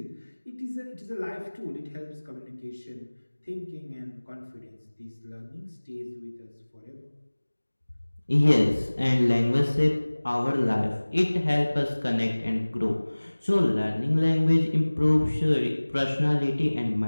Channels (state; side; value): inverted; both; correlation -1.00